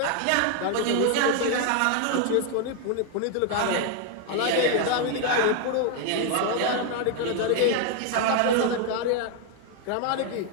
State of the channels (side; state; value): both; different; correlation 0.01